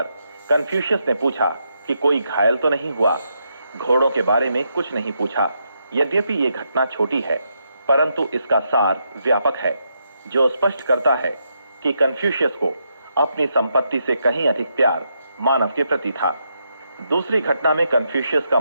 कन्फ्यूशियस ने पूछा कि कोई घायल तो नहीं हुआ। घोड़ों के बारे में कुछ नहीं पूछा। यद्यपि ये घटना छोटी है, परंतु इसका सार व्यापक है, जो स्पष्ट करता है कि कन्फ्यूशियस को अपनी संपत्ति से कहीं अधिक प्यार मानव के प्रति था। दूसरी घटना में कन्फ्यूशियस का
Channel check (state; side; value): inverted; both; correlation -0.81